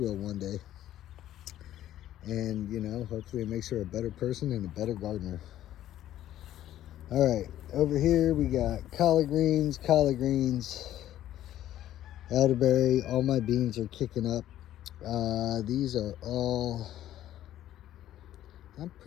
one day. And, you know, hopefully it makes her a better person and a better gardener. All right, over here we got collard greens, elderberry. All my beans are kicking up. These are all, I'm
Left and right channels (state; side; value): quieter; right; 12.7 dB